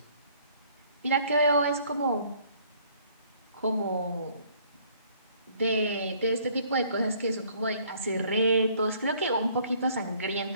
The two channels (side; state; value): both; inverted; correlation -0.59